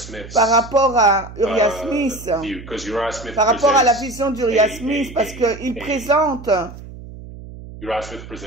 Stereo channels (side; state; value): right; noise; hum, 15 dB below the sound